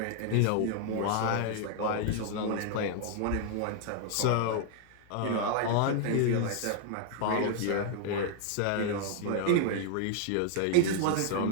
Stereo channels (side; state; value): both; different; correlation 0.00